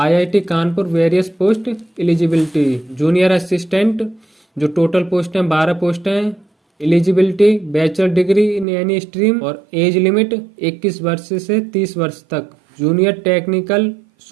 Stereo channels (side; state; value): left; drops out; at 8.7 s